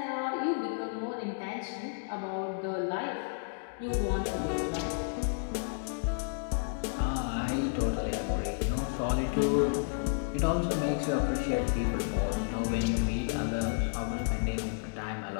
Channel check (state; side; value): silent; right; digital silence